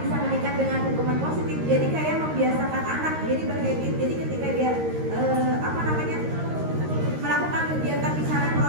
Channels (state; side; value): late; left; 13 ms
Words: bisa meningkat dengan hukuman positif? Jadi kayak membiasakan anak, jadi berhabit. Jadi ketika dia melakukan kegiatan misalnya